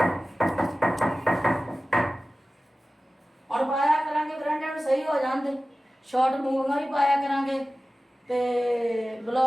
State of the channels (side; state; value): both; normal; correlation 0.96